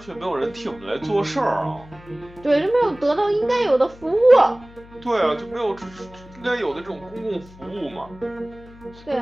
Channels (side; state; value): left; noise; hum, 21 dB below the sound